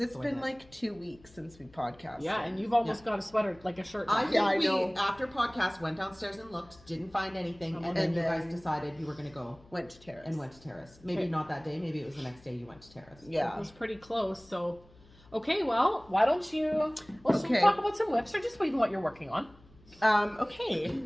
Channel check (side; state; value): left; noise; hum, 26 dB below the sound